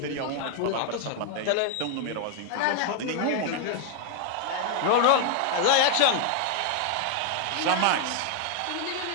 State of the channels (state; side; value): different; both; correlation 0.00